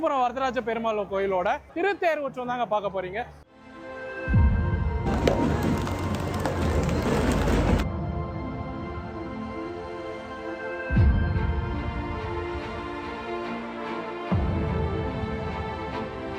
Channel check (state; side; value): identical; both; correlation 1.00